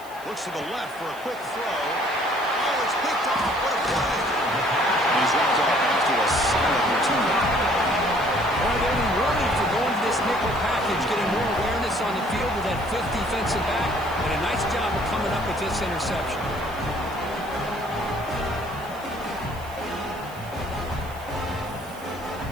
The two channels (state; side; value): noise; right; hiss, 21 dB below the sound